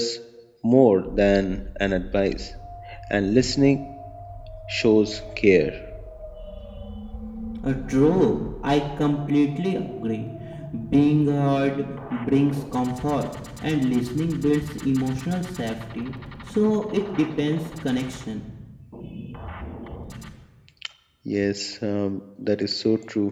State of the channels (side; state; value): both; identical; correlation 1.00